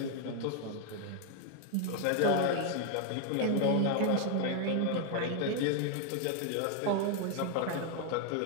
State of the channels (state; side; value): different; both; correlation 0.01